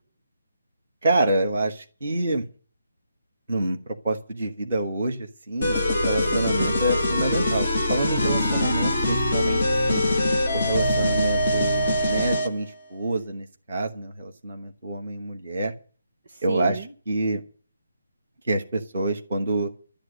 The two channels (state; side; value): inverted; both; correlation -0.78